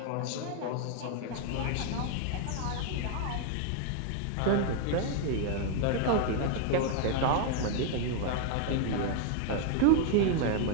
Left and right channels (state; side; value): different; both; correlation 0.00